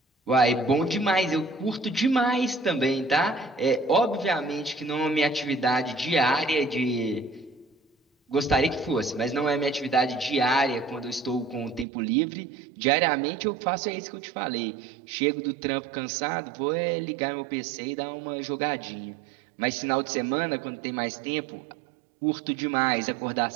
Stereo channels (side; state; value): left; drops out; at 11.9 s